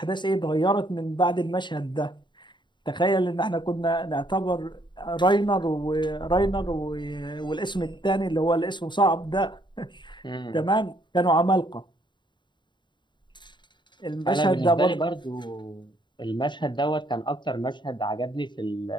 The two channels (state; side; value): late; right; 0.22 ms